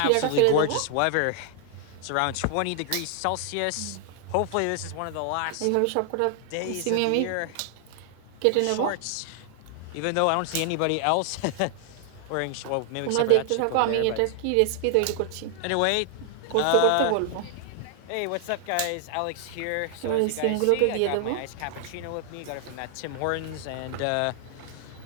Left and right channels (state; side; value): different; both; correlation 0.00